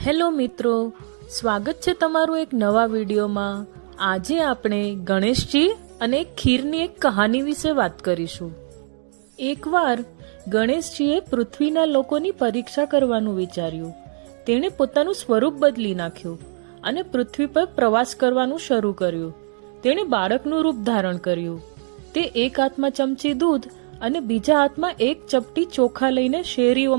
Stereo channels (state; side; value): silent; left; digital silence